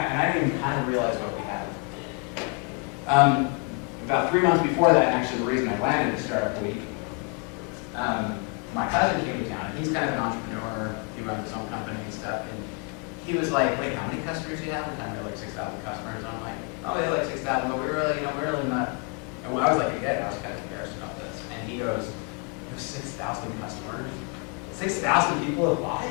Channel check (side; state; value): right; quieter; 35.3 dB